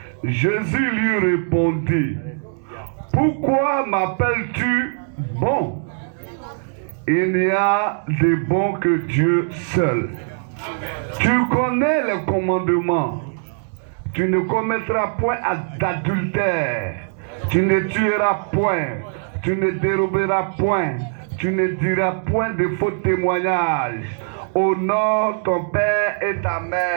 Jésus lui répondit: Pourquoi m'appelles-tu bon? Il n'y a de bon que Dieu seul. Tu connais les commandements. Tu ne commettras point d'adultère. Tu ne tueras point. Tu ne déroberas point. Tu ne diras point de faux témoignages. Honore ton père et ta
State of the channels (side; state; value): left; silent; digital silence